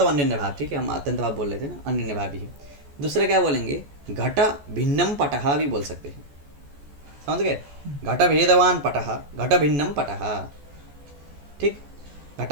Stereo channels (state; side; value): late; left; 14 ms